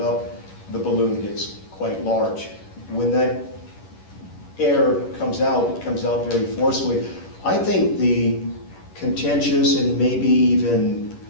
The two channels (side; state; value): right; late; 11 ms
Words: up, the balloon gets quite large. When that air comes out, it comes out very forcefully. I think the contentious and maybe even